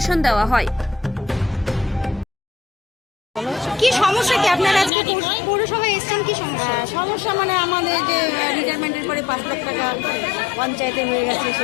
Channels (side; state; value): right; drops out; at 4.9 s